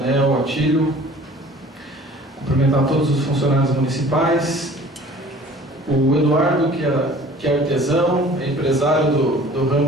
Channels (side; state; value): both; normal; correlation 0.48